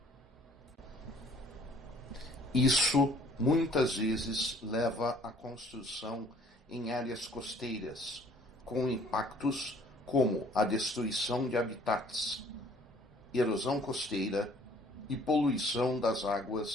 Isso muitas vezes leva à construção em áreas costeiras, com impactos como a destruição de habitats, erosão costeira e poluição das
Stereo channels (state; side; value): normal; both; correlation 0.57